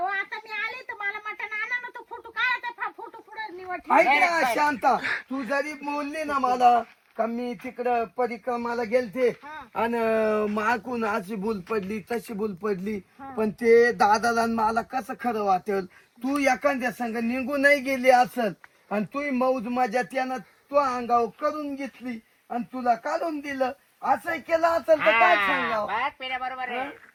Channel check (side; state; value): both; identical; correlation 1.00